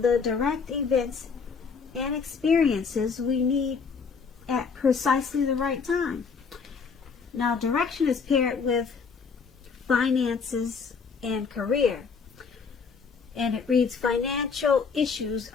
direct events and experiences we need at precisely the right time. Now direction is paired with finances and career. And it reads, financial issues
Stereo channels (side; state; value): right; quieter; 5.5 dB